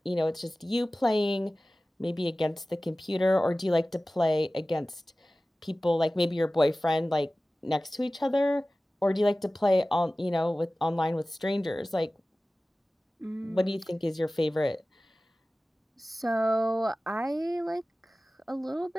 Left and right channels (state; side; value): normal; both; correlation 0.97